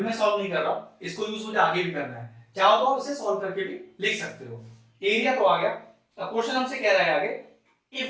सॉल्व नहीं कर रहा हूं, इसको यूज मुझे आगे भी करना है, चाहो तो इसे सॉल्व करके भी लिख सकते हो। एरिया तो आ गया। अब क्वेश्चन हमसे कह रहा है आगे,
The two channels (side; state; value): both; identical; correlation 1.00